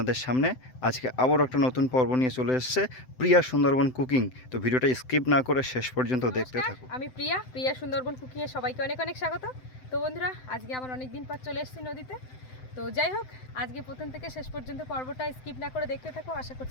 সামনে আজকে আবারও একটা নতুন পর্ব নিয়ে চলে এসেছে প্রিয়া সুন্দরবন কুকিং। তো ভিডিওটা স্কিপ না করে শেষ পর্যন্ত দেখতে থাকুন। আমি প্রিয়া সুন্দরবন কুকিংয়ে সবাইকে অনেক অনেক স্বাগত। তো বন্ধুরা, আজকে আমার অনেক দিন পর চলে এসেছি নদীতে। তো যাই হোক, আজকে প্রথম থেকে শেষ পর্যন্ত পর্বটা স্কিপ না করে দেখতে থাকো, আশা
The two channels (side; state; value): right; late; 7.8 ms